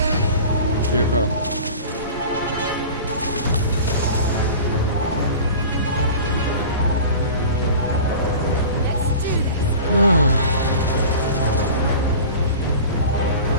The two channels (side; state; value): both; inverted; correlation -0.37